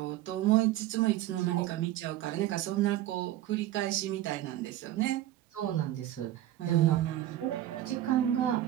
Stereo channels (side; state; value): left; quieter; 13.7 dB